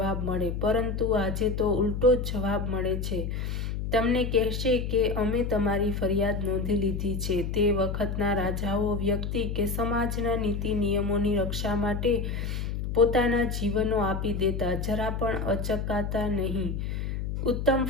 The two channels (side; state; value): left; noise; hum, 3 dB below the sound